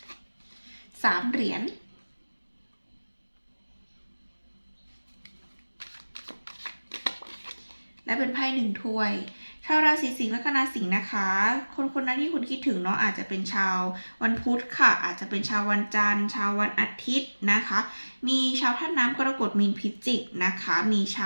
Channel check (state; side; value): inverted; both; correlation -1.00